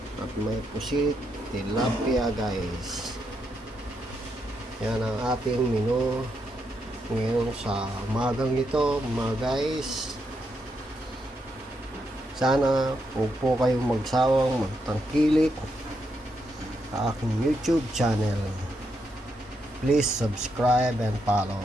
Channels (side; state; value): both; normal; correlation 0.81